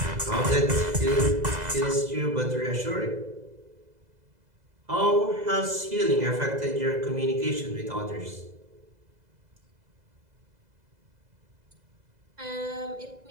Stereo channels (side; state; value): left; late; 2.0 ms